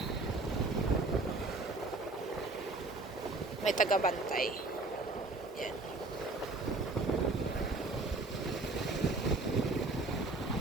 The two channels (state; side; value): quieter; left; 3.1 dB